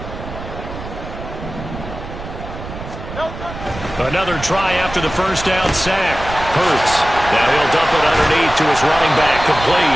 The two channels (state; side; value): noise; right; rumble, 11 dB below the sound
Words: Another try after the first down sack. Hurts. Now he'll dump it underneath to his running back.